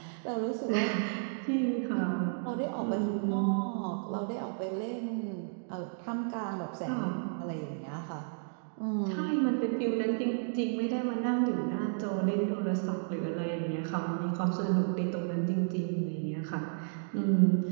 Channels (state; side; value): silent; left; digital silence